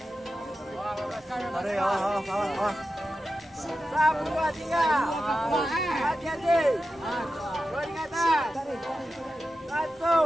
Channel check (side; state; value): both; normal; correlation 0.91